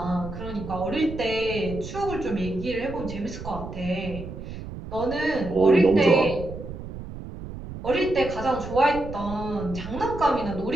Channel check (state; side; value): noise; right; rumble, 10 dB below the sound